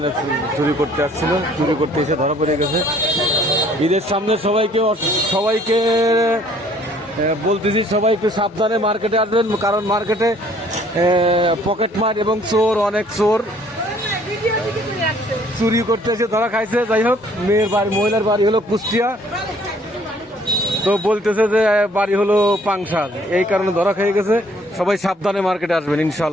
চুরি করতে আসছিল, চুরি করতে এসে ধরা পড়ে গেছে। ঈদের সামনে সবাইকে বলতেছি, সবাই একটু সাবধানে মার্কেটে আসবেন, কারণ মার্কেটে পকেটমার এবং চোর, অনেক চোর চুরি করতে এসে ধরা খাইছে। যাই হোক, মহিলার বাড়ি হলো কুষ্টিয়া, তো বলতেছে যে বাড়ি হলো পাংশা, এই কারণে ধরা খেয়ে গেছে। সবাই সাবধানে মার্কেটে আসবেন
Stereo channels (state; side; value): normal; both; correlation 0.60